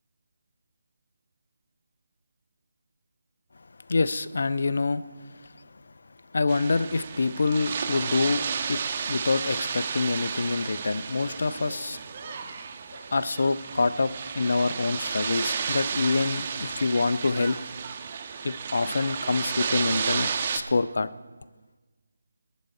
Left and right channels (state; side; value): inverted; both; correlation -0.90